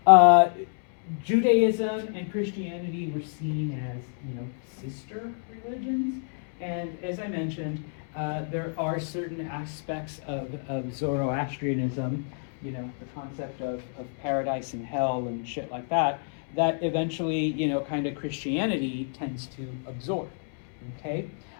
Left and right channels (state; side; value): silent; right; 59 dB below the other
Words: Judaism and Christianity were seen as, sister religions, and as I mentioned, there are certain aspects of Zoroastrianism, the concept of paradise and hell and shit like that, that eventually, kind of Christianity tends to absorb, okay?